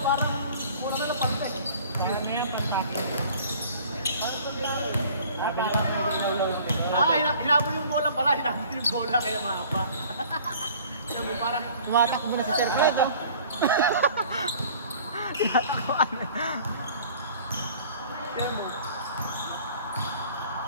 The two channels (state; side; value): inverted; both; correlation -0.50